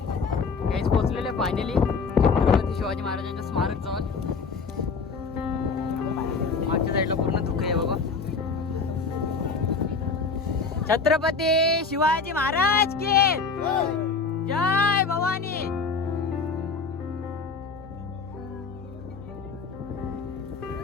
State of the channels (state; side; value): quieter; right; 4.7 dB